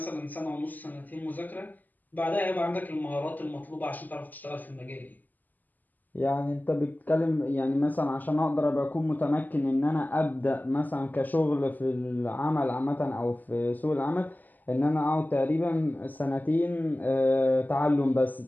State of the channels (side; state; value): right; late; 0.084 ms